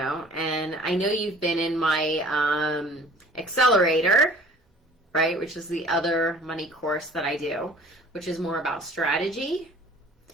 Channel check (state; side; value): normal; both; correlation 0.50